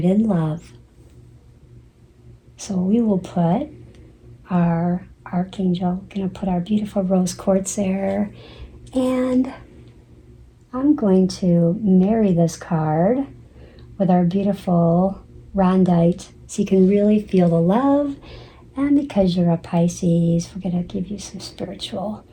in love. So we will put our Archangel, going to put our beautiful rose quartz there, and I'm going to marry this card with our beautiful rondite so you can really feel the love. And because you're a Pisces, we're going to give you some spiritual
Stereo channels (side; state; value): both; identical; correlation 1.00